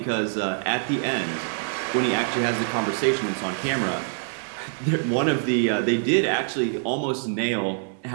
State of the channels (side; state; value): left; silent; 62 dB below the other